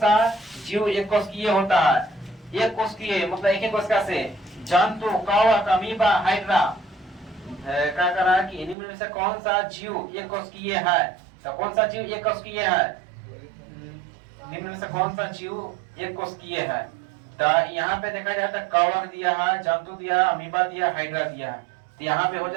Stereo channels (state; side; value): drops out; left; at 8.8 s